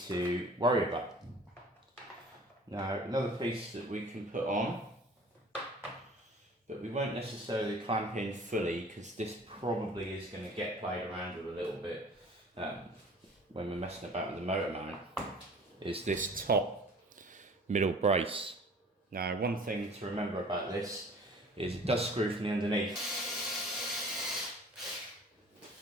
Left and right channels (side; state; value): both; normal; correlation 0.47